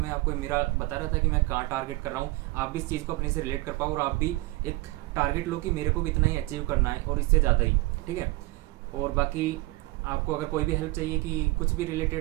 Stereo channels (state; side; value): quieter; left; 21.3 dB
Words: आपको मेरा बता रहा था कि मैं कहाँ टारगेट कर रहा हूँ, आप भी इस चीज़ को अपने से रिलेट कर पाओ और आप भी एक टारगेट लो कि मेरे को भी इतना ही अचीव करना है और इससे ज़्यादा ही, ठीक है। और बाकी आपको अगर कोई भी हेल्प चाहिए कि कुछ भी